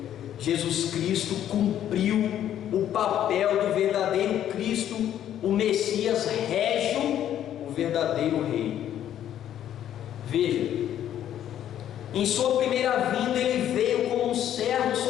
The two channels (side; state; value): right; quieter; 10.9 dB